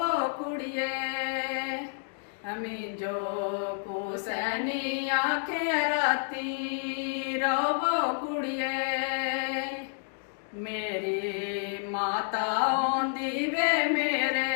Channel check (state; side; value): silent; right; digital silence